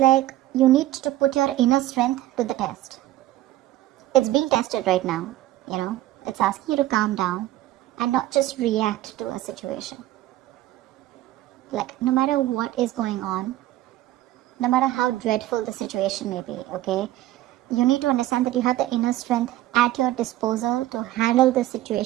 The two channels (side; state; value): left; quieter; 15.0 dB